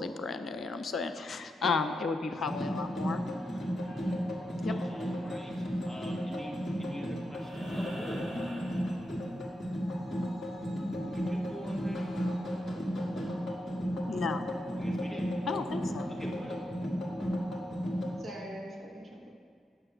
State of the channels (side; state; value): both; normal; correlation 0.86